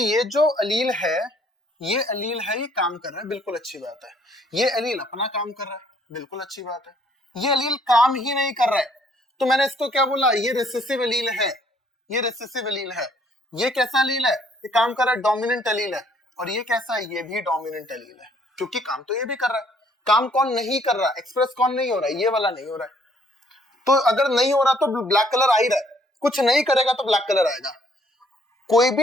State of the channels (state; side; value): normal; both; correlation 0.63